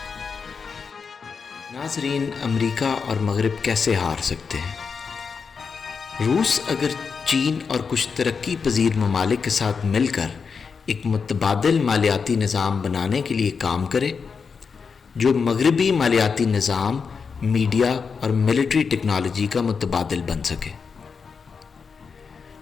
ناظرین، امریکہ اور مغرب کیسے ہار سکتے ہیں؟ روس اگر چین اور کچھ ترقی پذیر ممالک کے ساتھ مل کر ایک متبادل مالیاتی نظام بنانے کے لیے کام کرے جو مغربی مالیاتی نظام، میڈیا اور ملٹری ٹیکنالوجی کا متبادل بن سکے۔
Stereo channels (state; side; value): quieter; right; 5.6 dB